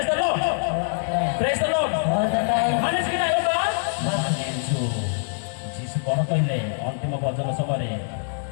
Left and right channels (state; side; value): silent; right; digital silence